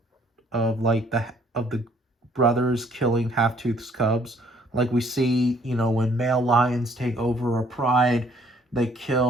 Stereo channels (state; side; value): normal; both; correlation 0.62